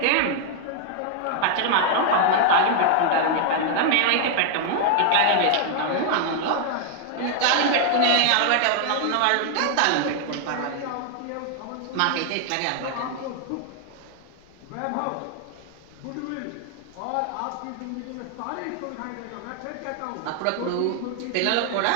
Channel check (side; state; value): both; different; correlation 0.00